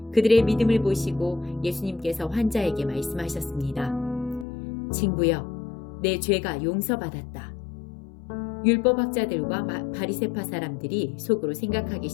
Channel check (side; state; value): right; drops out; at 4.5 s